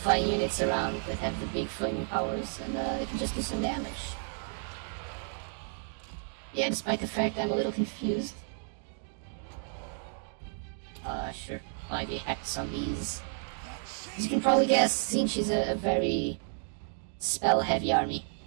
units around that have the big flaming powers and they can just do some damage. Yeah, despite the fact I'm a little confused. Sure, apply the Hex on these. As you can probably guess, Zinch is a very spell-heavy army.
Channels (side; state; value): left; silent; 57 dB below the other